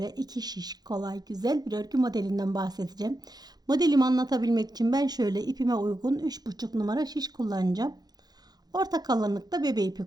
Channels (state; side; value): late; left; 0.19 ms